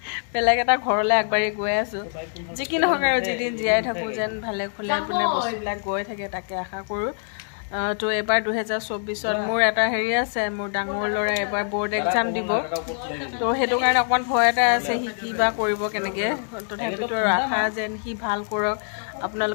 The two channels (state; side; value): silent; right; digital silence